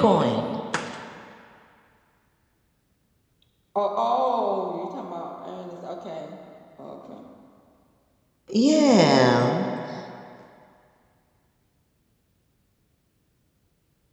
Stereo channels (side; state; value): both; identical; correlation 1.00